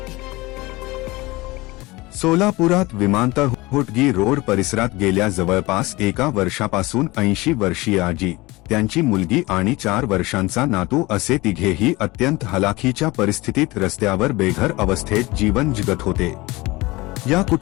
सोलापुरात विमानतळ Hotgi road परिसरात गेल्या जवळपास एका वर्षापासून 80 वर्षीय आजी, त्यांची मुलगी आणि 4 वर्षांचा नातू असे तिघेही अत्यंत हलाखीच्या परिस्थितीत रस्त्यावर बेघर अवस्थेत जीवन जगत होते. या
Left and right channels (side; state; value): right; quieter; 21.7 dB